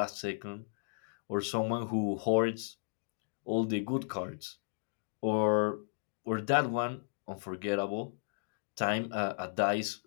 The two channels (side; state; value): right; silent; digital silence